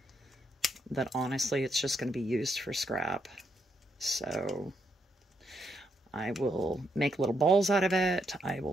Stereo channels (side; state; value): both; normal; correlation 0.77